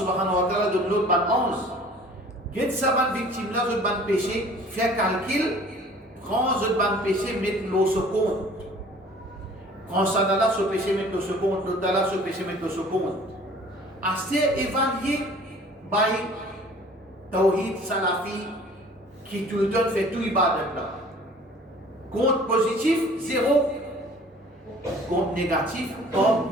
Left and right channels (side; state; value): both; normal; correlation 0.50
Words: wa ta'ala donne l'autre 11. Get sa bonne victime là, je ban péché, fait calcul, prends ce ban péché, mets l'eau sur compte. Prends ça dans là, ce péché, mets l'eau sur compte, l'autre dans là, ce péché, mets l'eau sur compte. Assez évalué par Tawhid Salafi qui tout le temps fait tout ibadat là. Compte positif, 0. Compte négatif, par